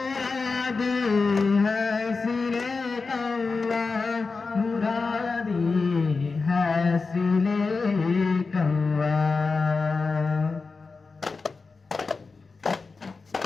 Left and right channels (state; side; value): quieter; right; 4.3 dB